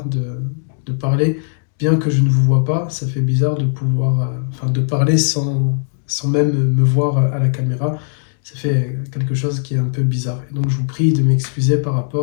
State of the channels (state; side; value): silent; right; digital silence